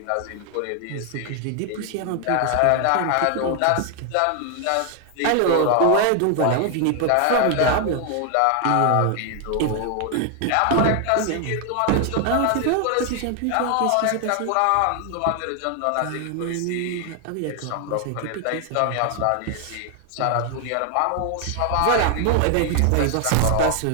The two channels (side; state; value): both; different; correlation 0.00